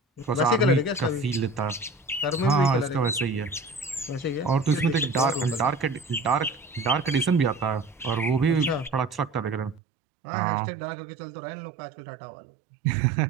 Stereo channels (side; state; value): left; drops out; at 9.8 s